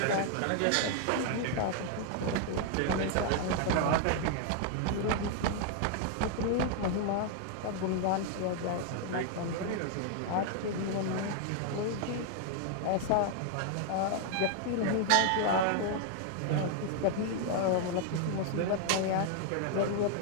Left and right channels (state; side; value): different; both; correlation 0.00